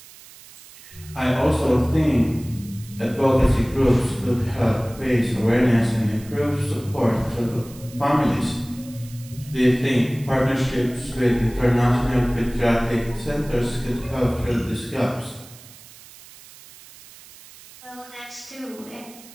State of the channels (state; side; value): noise; right; hiss, 20 dB below the sound